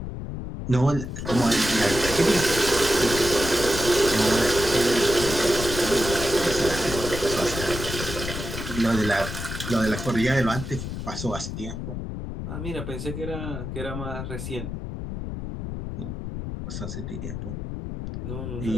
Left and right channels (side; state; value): left; noise; rumble, 6 dB below the sound